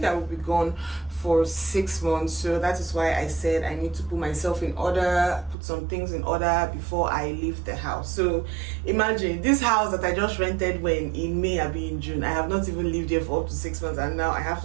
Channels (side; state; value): left; drops out; at 5.6 s